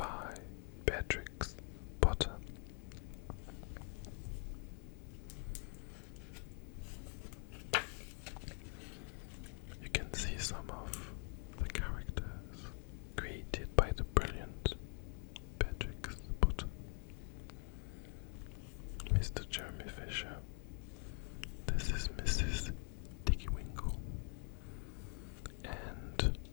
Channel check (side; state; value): right; quieter; 34.6 dB